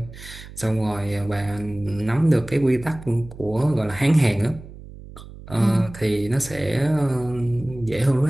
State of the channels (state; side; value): noise; right; hum, 16 dB below the sound